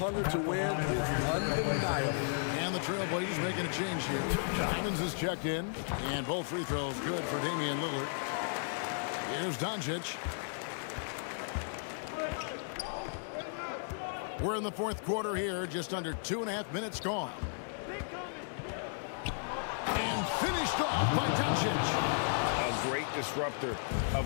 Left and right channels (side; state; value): right; silent; digital silence